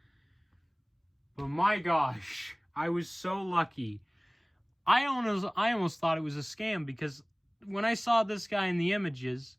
But my gosh, I was so lucky. I almost thought it was a scam because when I saw this guy in the images,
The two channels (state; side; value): identical; both; correlation 1.00